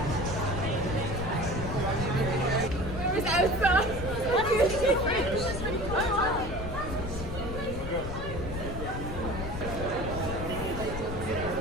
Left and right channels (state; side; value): noise; left; rumble, 6 dB below the sound